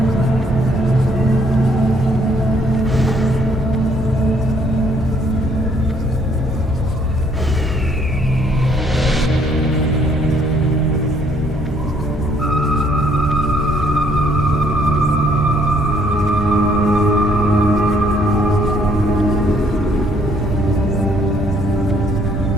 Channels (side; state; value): both; normal; correlation 0.66